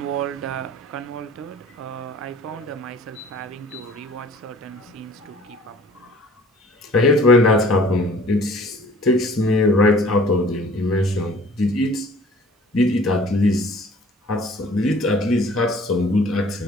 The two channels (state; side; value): normal; both; correlation 0.50